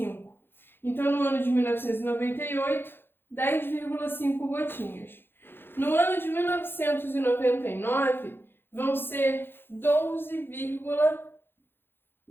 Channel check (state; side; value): late; right; 0.10 ms